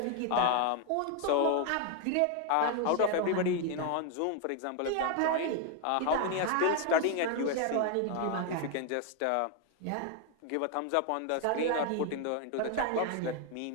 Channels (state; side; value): different; both; correlation 0.01